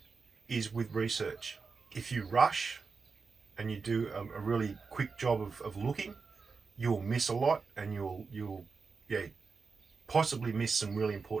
is with research. If you rush and you do a really quick job of looking, you'll miss a lot and you'll possibly miss some really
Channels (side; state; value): left; quieter; 4.8 dB